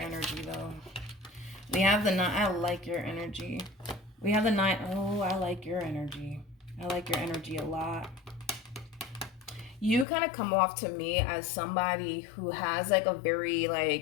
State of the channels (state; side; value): drops out; right; at 10.1 s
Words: energy though. We have the 9. I like your energy. We have the 9. Oh, I like your energy. I like your energy a lot. You kind of come off to me as somebody who has like a very